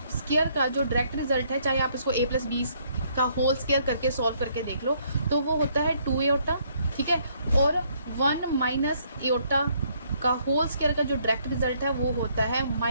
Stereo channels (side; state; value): both; inverted; correlation -0.68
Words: स्क्वायर का जो डायरेक्ट रिजल्ट है, चाहे आप इसको a प्लस बी का होल स्क्वायर करके सॉल्व करके देख लो, तो वो होता है 2 एयोटा, ठीक है। और 1 माइनस एयोटा का होल स्क्वायर का जो डायरेक्ट रिजल्ट है वो होता है